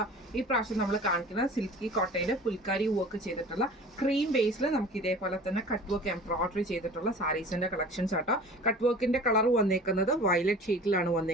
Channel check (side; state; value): both; normal; correlation 0.42